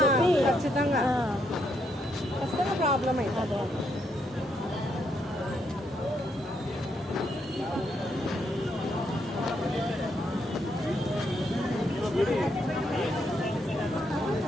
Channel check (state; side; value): normal; both; correlation 0.76